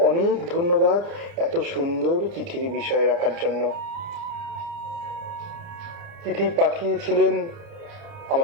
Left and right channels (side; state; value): left; late; 30 ms